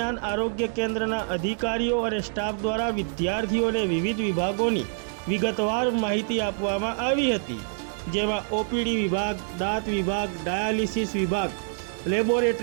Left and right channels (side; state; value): left; silent; 59 dB below the other